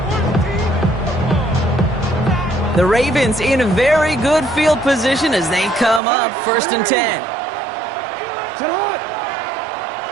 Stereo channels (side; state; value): left; drops out; at 6.0 s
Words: The Ravens in a very good field position as they come up first and 10. Sit hot.